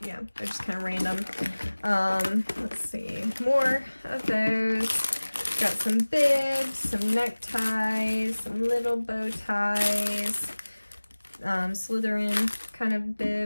yeah, they're just kind of random. Let's see, more of those. Got some bibs, some neckties, some little bow ties, Slytherin kind of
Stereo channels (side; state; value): both; inverted; correlation -1.00